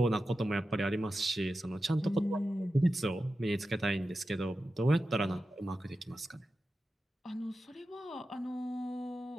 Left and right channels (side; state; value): both; normal; correlation 0.92